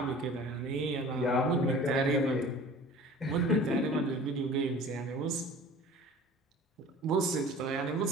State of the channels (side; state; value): both; normal; correlation 0.44